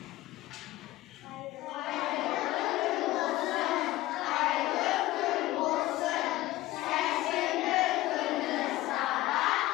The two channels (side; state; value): right; quieter; 17.2 dB